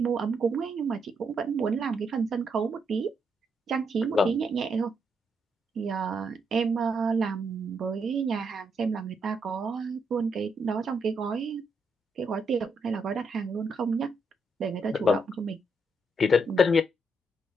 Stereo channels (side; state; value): both; normal; correlation 0.78